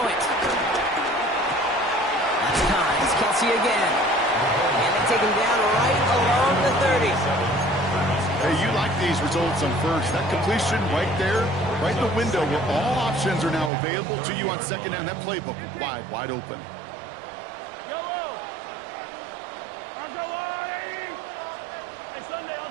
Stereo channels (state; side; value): drops out; left; at 13.7 s